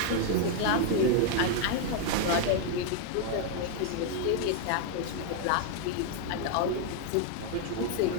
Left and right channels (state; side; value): different; both; correlation 0.00